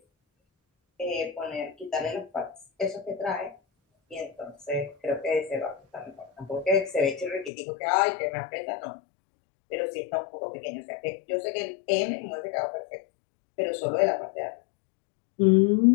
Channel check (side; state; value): right; drops out; at 7.5 s